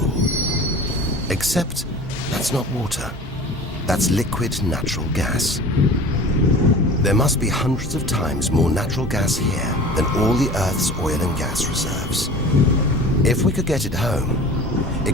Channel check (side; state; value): both; normal; correlation 0.40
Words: Except that's not water. That's liquid natural gas. There must be hundreds of times more natural gas here than all the Earth's oil and gas reserves. If we could get it home,